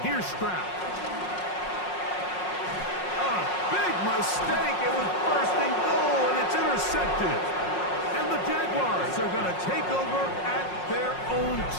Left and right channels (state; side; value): late; right; 5.5 ms